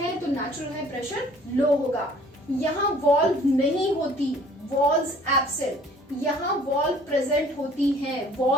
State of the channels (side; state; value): both; normal; correlation 0.54